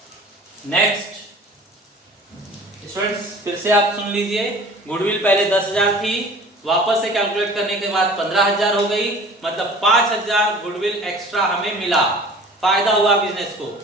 नेक्स्ट स्टूडेंट्स फिर से आप सुन लीजिए, गुडविल पहले 10,000 थी, वापस से कैलकुलेट करने के बाद 15,000 हो गई, मतलब 5,000 गुडविल एक्स्ट्रा हमें मिला, फायदा हुआ बिजनेस को।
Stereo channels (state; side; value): normal; both; correlation 0.44